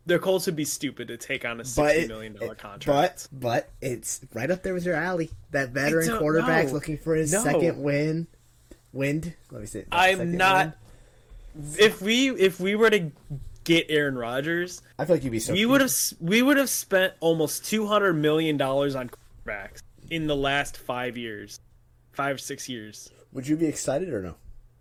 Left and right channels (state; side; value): identical; both; correlation 1.00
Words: The Colts would be stupid to take on a $60 million contract. But it's right up there with your alley. That veteran quarterback looking for his second wind. Let me see. I'm not. If we were to get Aaron Rodgers, I feel like you'd be so. We would have spent almost $200 million on quarterbacks in the last 5 years, 6 years. Would you be excited or no?